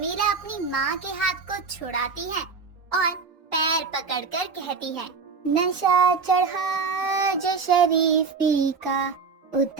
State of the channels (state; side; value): quieter; left; 5.0 dB